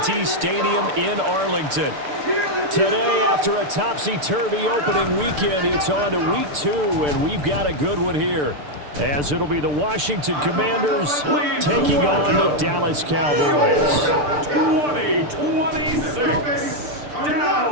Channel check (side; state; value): left; late; 6.8 ms